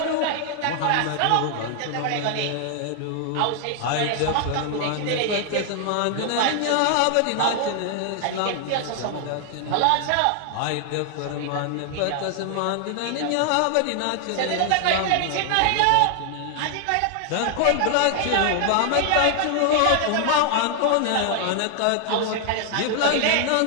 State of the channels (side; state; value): both; different; correlation 0.00